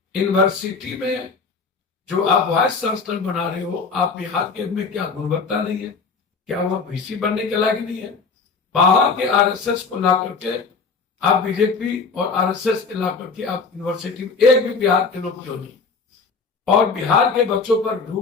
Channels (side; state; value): right; quieter; 4.7 dB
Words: यूनिवर्सिटी में जो आप वाइस चांसलर बना रहे हो, आप बिहार के में क्या गुणवत्ता नहीं है? क्या वह वीसी बनने के लायक नहीं है? बाहर के आरएसएस को ला करके आप बीजेपी और आरएसएस के ला करके आप यूनिवर्सिटी में एक भी बिहार के लोग क्यों नहीं? और बिहार के बच्चों पर